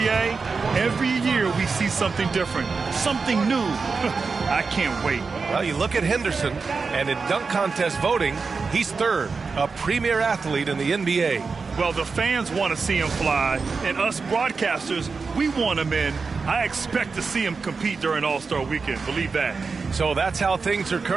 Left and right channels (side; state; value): left; quieter; 4.7 dB